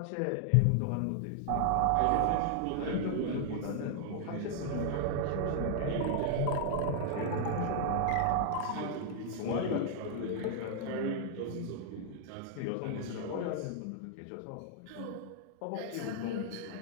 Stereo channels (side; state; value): both; different; correlation 0.00